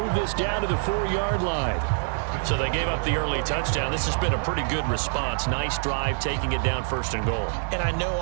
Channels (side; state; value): left; silent; 61 dB below the other